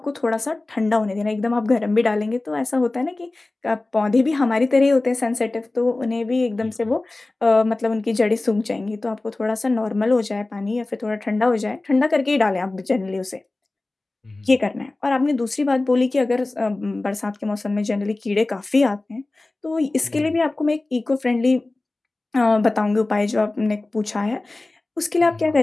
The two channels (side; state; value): right; quieter; 3.0 dB